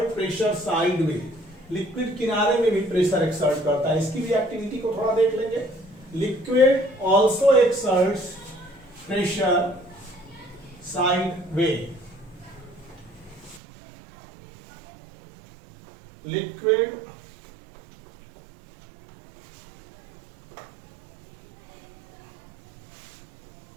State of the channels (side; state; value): left; drops out; at 13.6 s